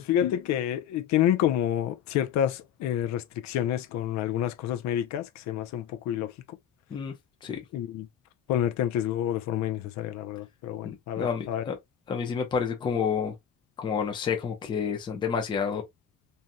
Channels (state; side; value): quieter; right; 9.1 dB